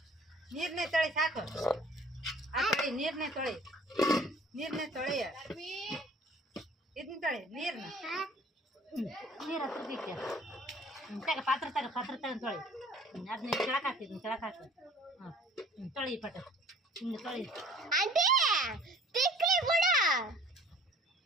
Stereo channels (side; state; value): both; normal; correlation 0.51